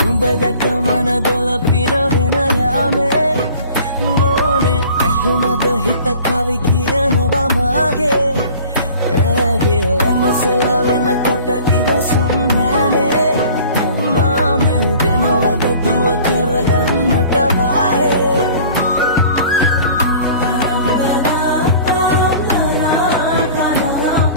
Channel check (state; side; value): inverted; both; correlation -0.46